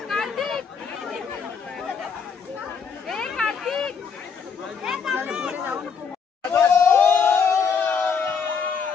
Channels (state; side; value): quieter; right; 6.0 dB